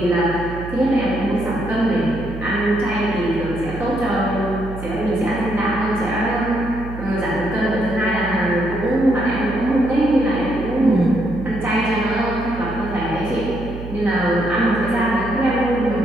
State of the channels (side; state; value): right; noise; hum, 10 dB below the sound